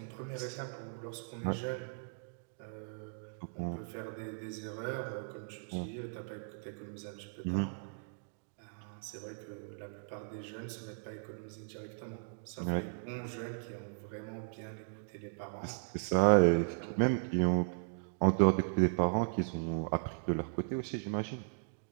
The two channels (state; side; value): silent; left; digital silence